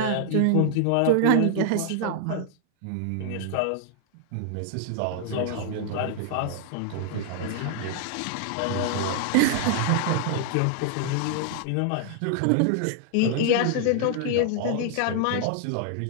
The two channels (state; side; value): different; both; correlation 0.00